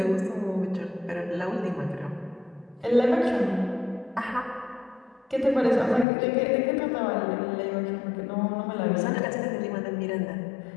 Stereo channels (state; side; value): drops out; right; at 6.1 s